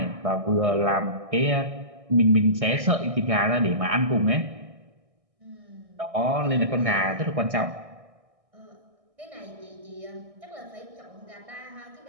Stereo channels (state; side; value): late; left; 1.6 ms